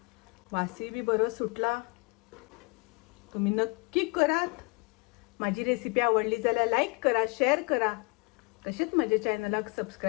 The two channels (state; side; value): quieter; right; 31.2 dB